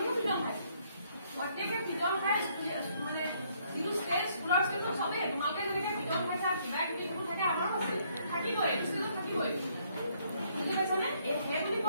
পিটন খাই প্ৰত্যেকে পিটন খাই মানে যিটো ষ্টেজ স্কুলৰ ষ্টেজত চবেই তোমালোকে যেনেকে পিটন খাইছা কিবা কিবি যিবোৰ থাকে আমাৰো আছে, থাকিবই ষ্টেজত থাকিবই। বুজি পাইছানে? সেই বুলি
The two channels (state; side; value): inverted; both; correlation -0.68